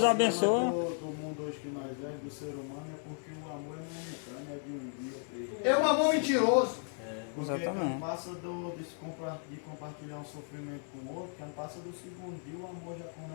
abençoa. Do mundo hoje que nós é, do ser humano, é porque o amor é momentâneo, é de um dia, 3 dias. É um amor mentiroso. Porque Exatamente. não passa de compartilhar um sofrimento com o outro, que não passa do segundo dia, o amor já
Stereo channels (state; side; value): silent; right; 55 dB below the other